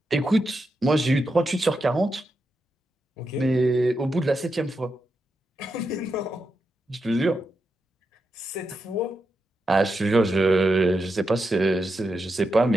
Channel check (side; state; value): both; normal; correlation 0.86